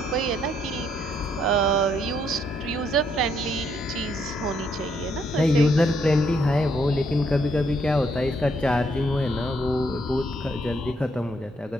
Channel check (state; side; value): normal; both; correlation 0.72